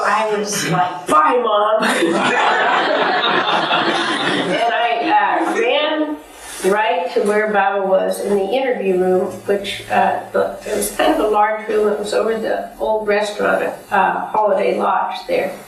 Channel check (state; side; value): identical; both; correlation 1.00